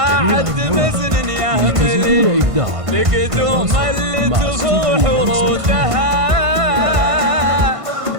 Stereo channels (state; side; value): late; left; 1.5 ms